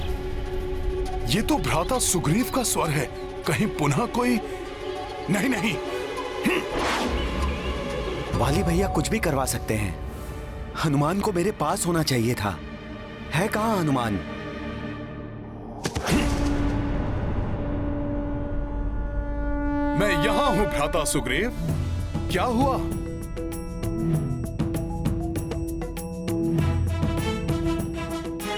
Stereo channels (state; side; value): identical; both; correlation 1.00